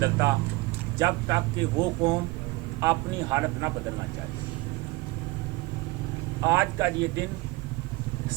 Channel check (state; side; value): quieter; left; 22.1 dB